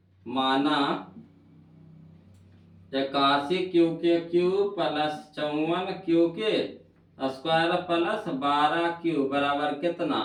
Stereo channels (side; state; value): both; identical; correlation 1.00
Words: माना 81 क्यू के क्यू प्लस 54 क्यू के स्क्वायर प्लस 12 क्यू बराबर